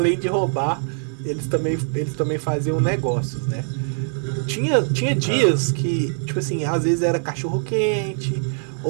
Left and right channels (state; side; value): silent; left; digital silence